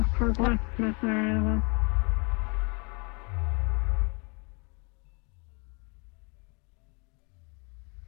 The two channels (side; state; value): right; quieter; 33.3 dB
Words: for blacksmith area then.